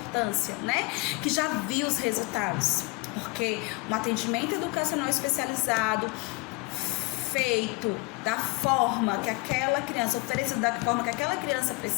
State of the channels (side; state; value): right; quieter; 27.2 dB